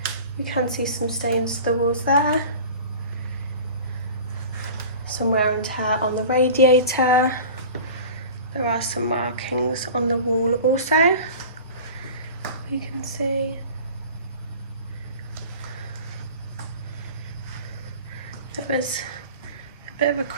You can see some stains to the walls there. Some wear and tear on the radiator. There are some markings on the wall also. You can see. There was a bit of a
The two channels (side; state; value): both; inverted; correlation -0.39